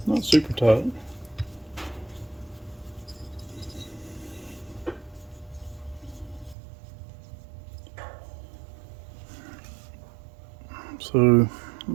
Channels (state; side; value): drops out; left; at 6.6 s